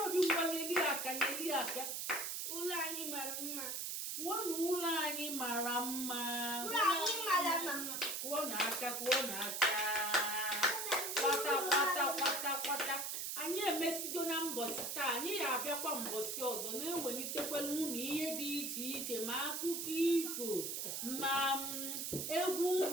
Obi ngwa nyeli aka ụlọ anyị mara mma kwuo na ụlọ anyị mara mma kwuo na aka kwata anyị emesigo na mbọsị taa anyị ga-abịakwa mbọsị ọzọ na-ewelitekwala unu ihe dị iche iche ma akụkọ ifo ma egwu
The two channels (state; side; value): noise; right; hiss, 3 dB below the sound